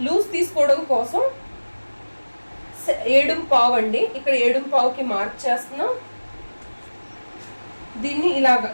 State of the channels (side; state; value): both; inverted; correlation -1.00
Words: లూజ్ తీసుకోవడం కోసం 7:15 అండి. ఇక్కడ 7:15కి మార్క్ చేస్తున్నాం. దీన్ని ఇలాగా